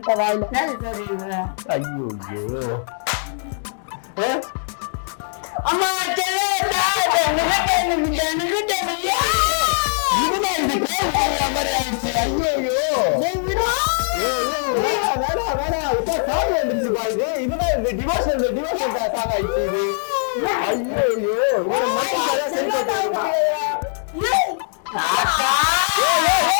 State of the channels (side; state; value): right; silent; digital silence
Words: வாயில. ஐயோ அம்மா